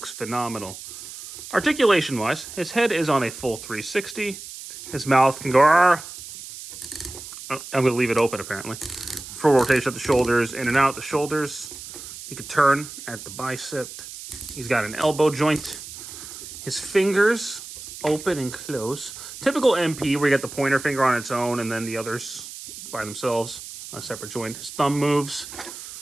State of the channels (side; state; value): right; noise; hiss, 12 dB below the sound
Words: phenomenal. Articulation-wise, his head is on a full 360. His mouth can go... I'm going to leave it open, apparently. Full rotation at the shoulders, in and out the shoulders. He can turn at the bicep. He's got an elbow joint. His fingers open and close. Typical MP, where you get the pointer finger on its own and then the others by themselves on a separate joint. His thumb moves.